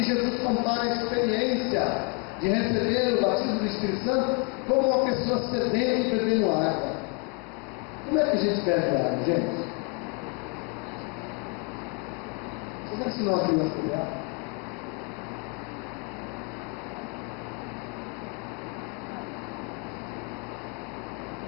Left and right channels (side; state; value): right; quieter; 31.4 dB